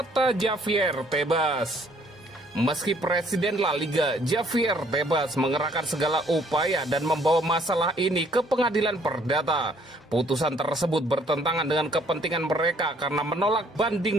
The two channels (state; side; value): normal; both; correlation 0.62